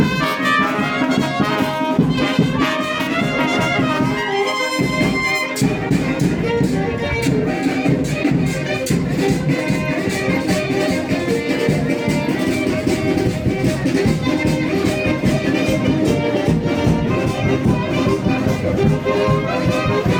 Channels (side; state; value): both; identical; correlation 1.00